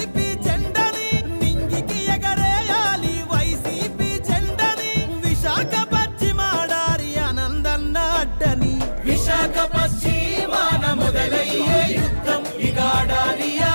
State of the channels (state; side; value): inverted; both; correlation -1.00